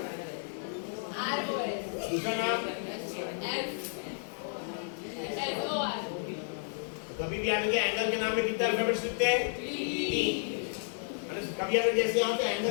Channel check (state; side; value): silent; right; digital silence